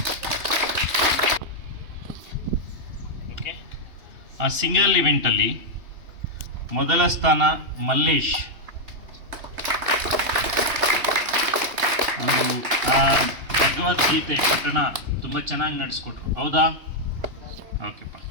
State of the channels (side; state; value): left; late; 2.9 ms